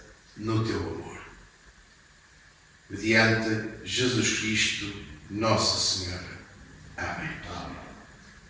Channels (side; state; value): both; identical; correlation 1.00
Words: no teu amor. Mediante Jesus Cristo, nosso Senhor. Amém.